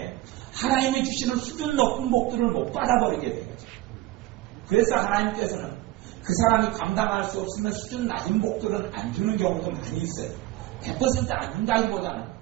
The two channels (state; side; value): quieter; left; 17.2 dB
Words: 하나님이 주시는 수준 높은 복들을 못 받아버리게 되는 거죠. 그래서 하나님께서는 그 사람이 감당할 수 없으면 수준 낮은 복들은 안 주는 경우도 많이 있어요. 100% 안 준다기보다는